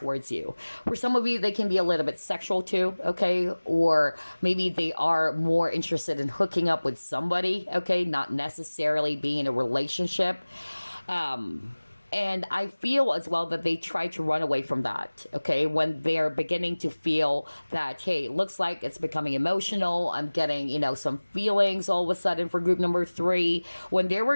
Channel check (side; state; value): both; inverted; correlation -1.00